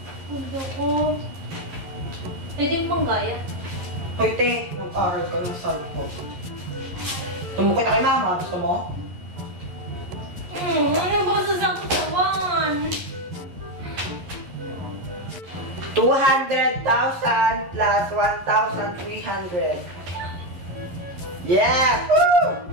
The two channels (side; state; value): left; late; 11 ms